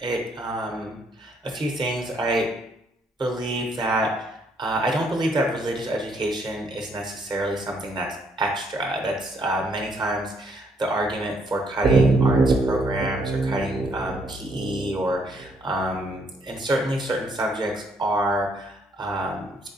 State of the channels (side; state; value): both; normal; correlation 0.69